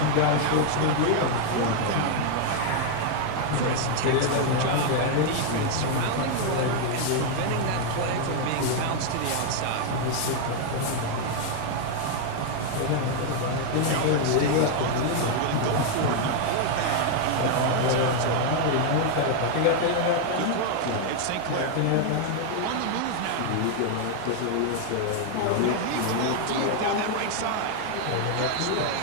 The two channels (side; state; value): both; different; correlation 0.00